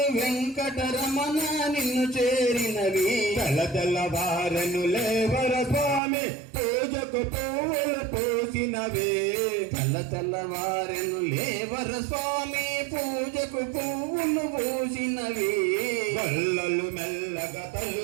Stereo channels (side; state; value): left; drops out; at 6.0 s